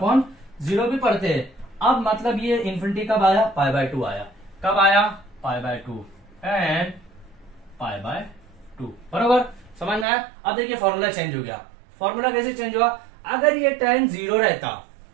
भी पढ़ते हैं। अब मतलब ये इन्फिनिटी कब आया, π/2 आया, कब आया π/2 एंड π/2 बरोबर, समझ में आया। अब देखिए फॉर्मूला चेंज हो गया, फॉर्मूला कैसे चेंज हुआ, अगर ये tan 0 रहता,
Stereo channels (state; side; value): drops out; left; at 10.1 s